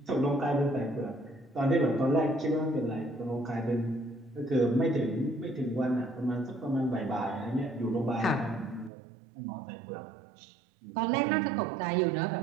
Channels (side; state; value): left; drops out; at 8.9 s